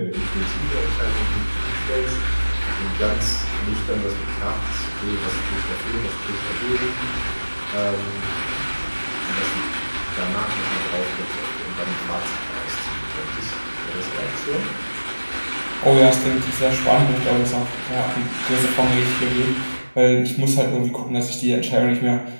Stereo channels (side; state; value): both; inverted; correlation -1.00